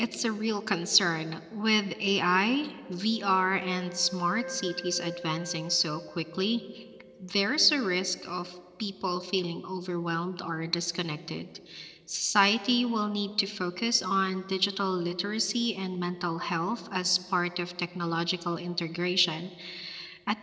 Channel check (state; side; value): identical; both; correlation 1.00